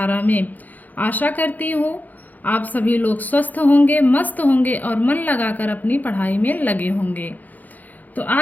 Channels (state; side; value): late; right; 0.082 ms